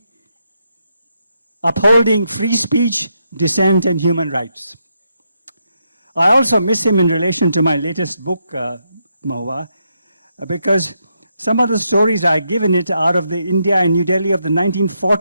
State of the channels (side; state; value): both; inverted; correlation -0.80